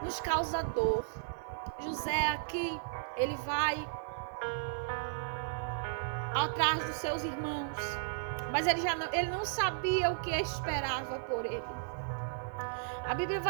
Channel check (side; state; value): left; silent; 55 dB below the other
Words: nos causa dor. José aqui, ele vai atrás dos seus irmãos, mas ele não sabia o que esperava por ele. A Bíblia